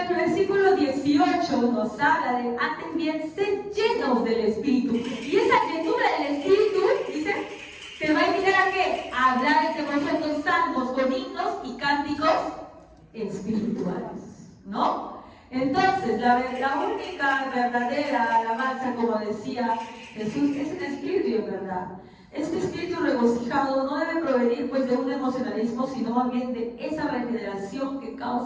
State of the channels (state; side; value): identical; both; correlation 1.00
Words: versículo 18 nos habla de, antes bien, ser llenos del Espíritu. Y esa llenura del Espíritu, dice, te va a invitar a qué? A hablar entre vosotros salmos con himnos y cánticos espirituales, ¿no? Entonces, la única verdadera alabanza, como decía Jesús, es el Espíritu, ¿verdad? Este espíritu regocijado no debe provenir pues de un emocionalismo, sino más bien de esa regeneración que